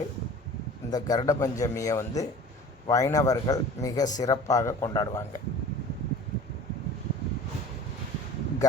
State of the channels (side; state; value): both; normal; correlation 0.42